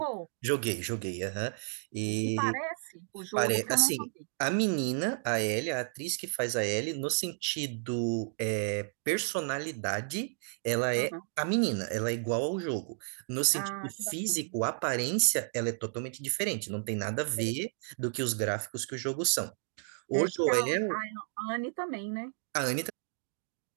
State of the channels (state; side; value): silent; left; digital silence